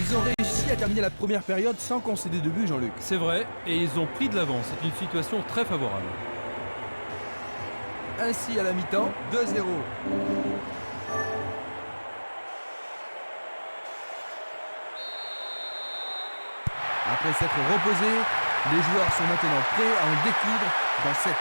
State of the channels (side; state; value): both; inverted; correlation -1.00